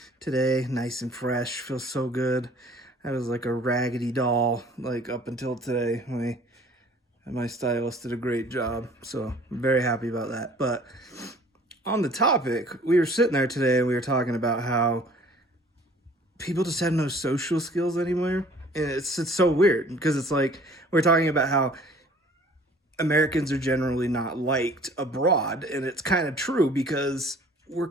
today, nice and fresh. Feels so good. I was like a raggedy doll like up until today. My stylist did a great job, so I'm very happy about that. But on the topic, we were sitting there today and we were talking about how people just have no social skills anymore. And it's so weird because it's like we're talking about how Americans are generally not liked abroad, and it's kind of true because we're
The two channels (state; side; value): normal; both; correlation 0.52